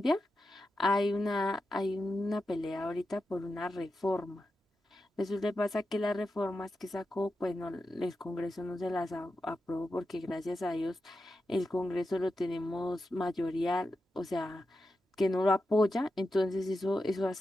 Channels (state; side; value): normal; both; correlation 0.89